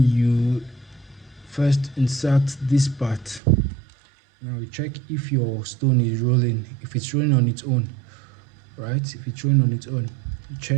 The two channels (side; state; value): left; drops out; at 3.4 s